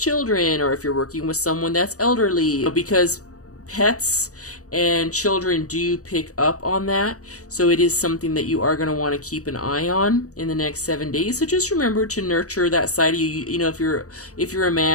or if you're working with someone that's elderly, because pets and children do pick up on that. So it is something that you are going to want to keep an eye on in the next 7 days. So just remember to nurture that side of you. You know, if you're a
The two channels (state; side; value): late; right; 0.66 ms